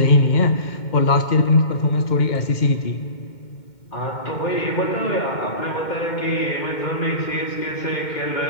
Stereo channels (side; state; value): right; late; 2.2 ms